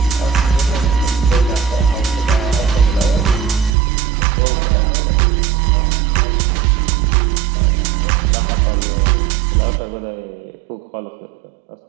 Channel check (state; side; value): drops out; left; at 3.7 s